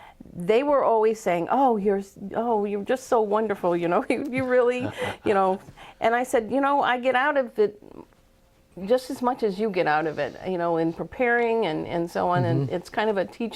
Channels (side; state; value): both; identical; correlation 1.00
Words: they were always saying, you're just so wonderful, you really, and I said, I get out of it just as much as you get out of it, in preparing and so on, and it's kind of a